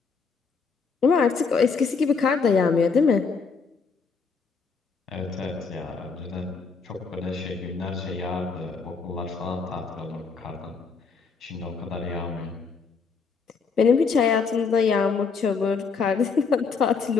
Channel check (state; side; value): quieter; right; 5.2 dB